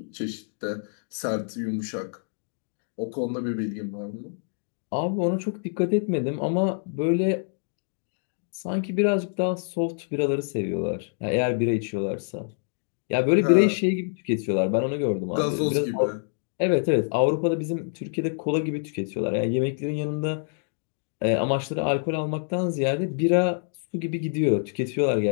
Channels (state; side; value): silent; right; digital silence